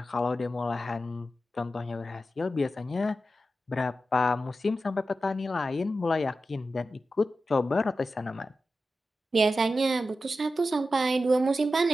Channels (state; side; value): normal; both; correlation 0.92